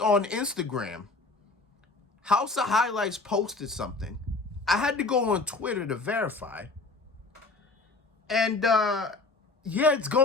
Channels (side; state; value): right; quieter; 3.6 dB